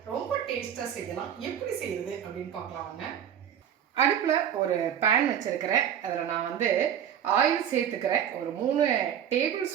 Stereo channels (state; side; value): quieter; left; 9.3 dB